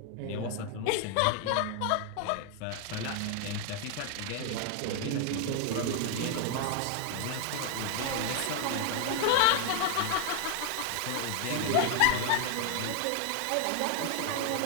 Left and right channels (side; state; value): both; different; correlation 0.00